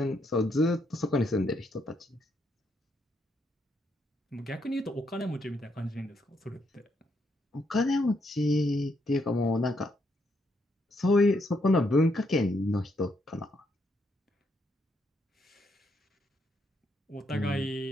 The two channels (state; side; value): normal; both; correlation 0.76